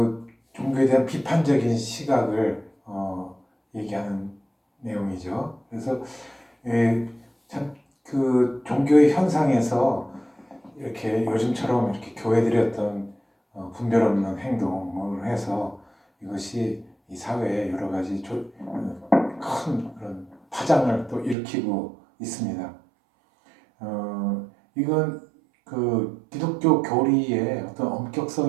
종교에 대한 비판적인 시각을 얘기하는 내용이죠. 그래서 참 그 종교의 현상에서 이렇게 요즘처럼 이렇게 교회들이 어떤 분별 없는 행동을 해서 이것이 이 사회에 여러 가지 큰 그런 파장을 또 일으키고 있습니다. 이건 그 기독교 교리의 어떤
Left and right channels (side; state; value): left; drops out; at 21.4 s